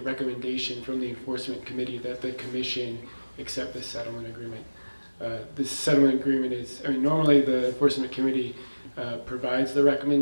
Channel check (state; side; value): inverted; both; correlation -1.00